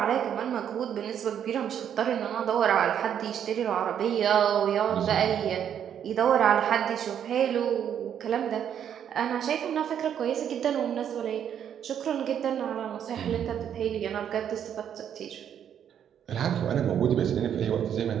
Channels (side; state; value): left; quieter; 9.1 dB